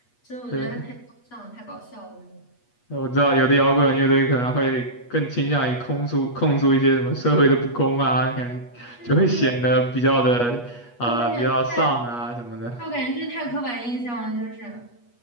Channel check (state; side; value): late; right; 8.3 ms